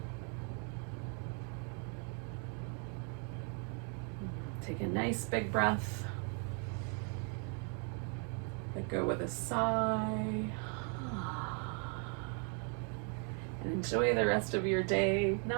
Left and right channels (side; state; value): left; quieter; 39.8 dB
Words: Take a nice big breath. Let go with a sigh. And enjoy the rest of your day.